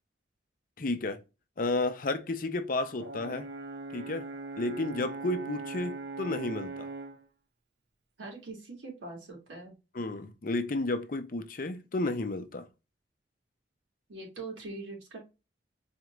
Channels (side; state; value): both; normal; correlation 0.24